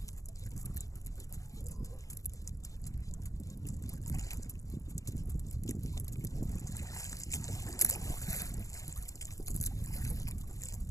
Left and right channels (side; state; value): right; late; 0.16 ms